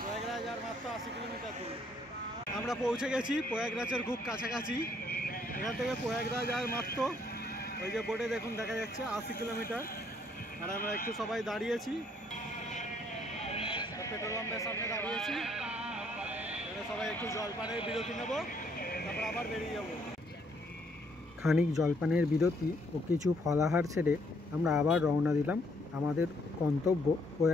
প্রয়াগরাজ আর মাত্র 80 কিলোমিটার দূর। আমরা পৌঁছে গেছি প্রয়াগরাজের খুব কাছাকাছি। এখান থেকে প্রয়াগরাজ আর মাত্র ওই যে বোর্ডে দেখুন দেখা যাচ্ছে 80 কিলোমিটার। আর আমরা একটু সবাই দাঁড়িয়েছি, পেট্রোল পাম্পের সামনে দাঁড়িয়েছি। এখানে সবাই একটু জলপানের বিরতি নেব, তারপর আবার বেরিয়ে যাব। খানিক জলপানের বিরতি ও কিছু ফলাহার ছেড়ে আমরা আবার রওনা দিলাম আমাদের গন্তব্য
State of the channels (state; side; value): normal; both; correlation 0.68